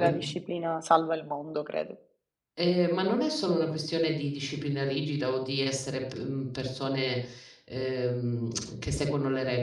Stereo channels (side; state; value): both; identical; correlation 1.00